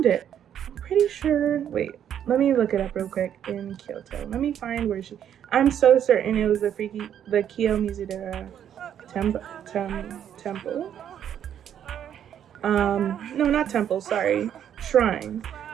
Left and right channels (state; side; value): quieter; left; 9.6 dB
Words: it. I'm pretty sure, wait, let me look it up real quick in Kyoto. Let me find where I'm so certain it was the Kiyomizu-dera Temple. No, not temple, sorry. Shrine.